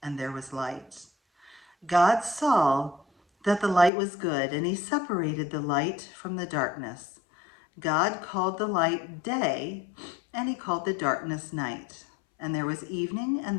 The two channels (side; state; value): right; drops out; at 3.9 s